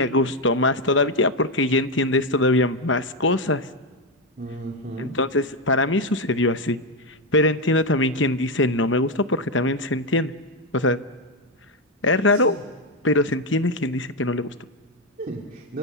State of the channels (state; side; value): normal; both; correlation 0.07